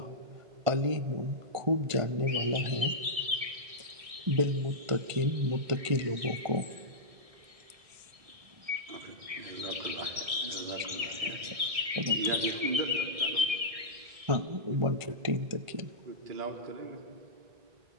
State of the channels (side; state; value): left; late; 1.6 ms